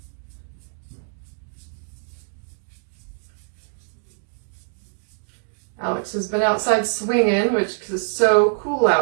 Alex has been outside swinging, which is so cool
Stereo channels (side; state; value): left; silent; digital silence